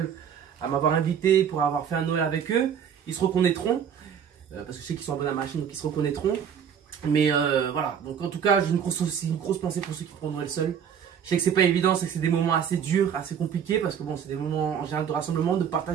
à m'avoir invité pour avoir fait un Noël avec eux. Ils se reconnaîtront, parce que je sais qu'ils sont abonnés à ma chaîne, donc ils se reconnaîtront. Mais voilà, donc en tout cas, j'ai une grosse pensée pour ceux qui font Noël seul. Je sais que c'est pas évident, c'est que c'est des moments assez durs, assez compliqués, parce que bon, c'est des moments en général de rassemblement, de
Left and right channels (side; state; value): left; quieter; 8.0 dB